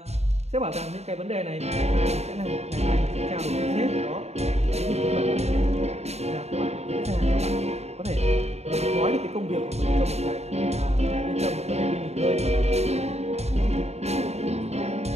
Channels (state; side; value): late; left; 0.31 ms